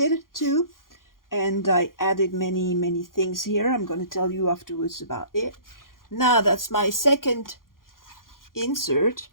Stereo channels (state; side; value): late; right; 0.91 ms